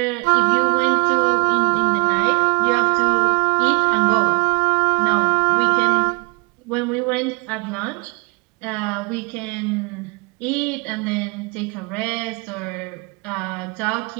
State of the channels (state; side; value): quieter; left; 31.2 dB